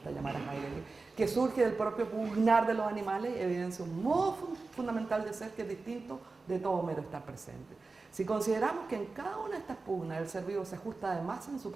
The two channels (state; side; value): quieter; left; 3.9 dB